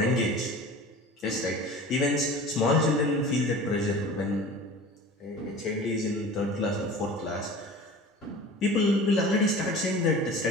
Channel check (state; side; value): normal; both; correlation 0.39